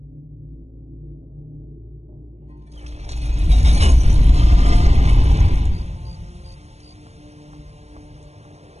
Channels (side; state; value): left; late; 0.31 ms